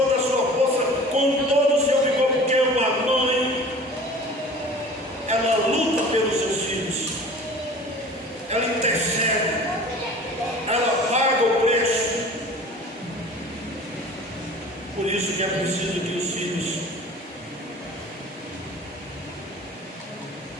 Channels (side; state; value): both; normal; correlation 0.43